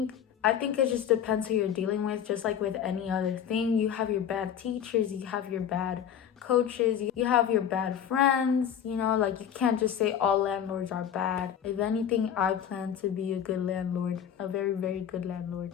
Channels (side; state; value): right; quieter; 9.0 dB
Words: it just depends who you're dealing with. Just like with any other thing, you have your bad teachers, you have your bad coaches, you have your bad friends, like you can't just say all landlords are bad. If anything, I plan to be a good landlord, a very, very good landlord.